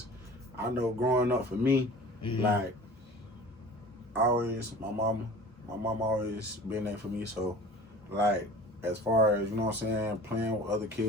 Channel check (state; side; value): normal; both; correlation 0.42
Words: I know growing up for me, like, my mama always been there for me. So, like, as far as, you know what I'm saying, playing with other